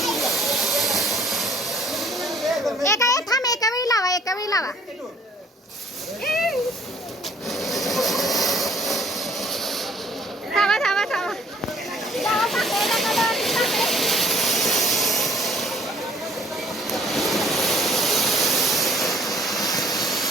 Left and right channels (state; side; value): normal; both; correlation 0.58